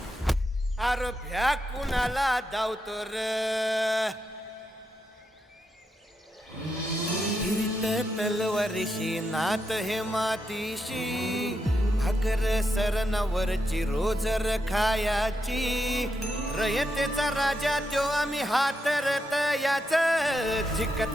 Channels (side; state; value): both; normal; correlation 0.84